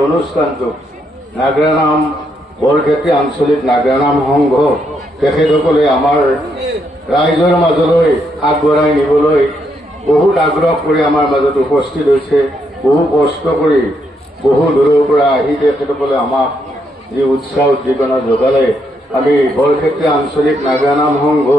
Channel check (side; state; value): both; normal; correlation 0.77